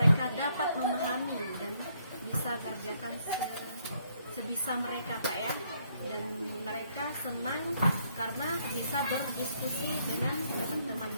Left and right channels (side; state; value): both; inverted; correlation -0.71